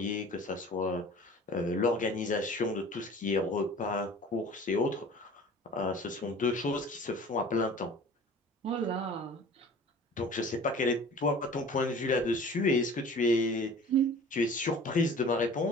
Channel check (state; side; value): normal; both; correlation 0.44